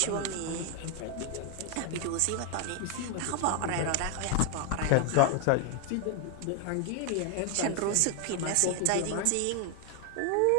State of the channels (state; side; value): different; both; correlation 0.00